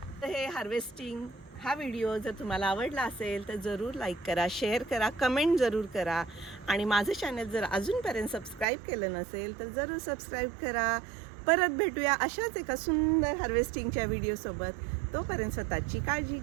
हे हार्वेस्टिंग हा व्हिडिओ जर तुम्हाला आवडला असेल तर जरूर लाईक करा, शेअर करा, कमेंट जरूर करा आणि माझं चॅनल जर अजूनपर्यंत सबस्क्राईब केलं नसेल तर जरूर सबस्क्राईब करा. परत भेटूया अशाच एका सुंदर हार्वेस्टिंगच्या व्हिडिओसोबत. तोपर्यंत स्वतःची काळजी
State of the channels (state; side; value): drops out; left; at 8.7 s